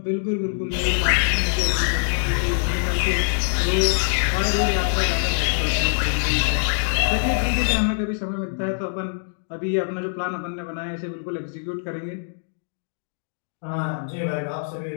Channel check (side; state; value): right; silent; digital silence